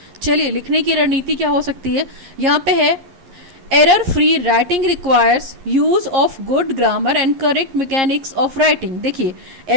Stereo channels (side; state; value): left; late; 11 ms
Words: चलिए, लिखने की रणनीति क्या हो सकती है. यहाँ पे है error free writing requires use of good grammar and correct mechanics of writing. देखिए,